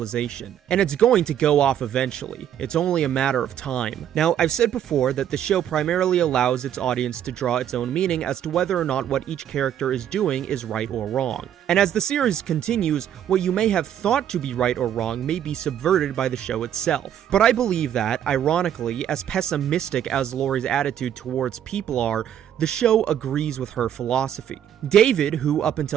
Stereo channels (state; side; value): quieter; left; 10.1 dB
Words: And it's going to go off eventually. It's only a matter of time. Now, I've said before that the show primarily allows its audience to draw its own meaning as to whether or not what each character is doing is right or wrong. And as the series continues, what you may have thought to be right or wrong may be subverted by the show itself. But I believe that, ironically, as pessimistic as Lori's attitude towards people are, the show agrees with her philosophy. David, who up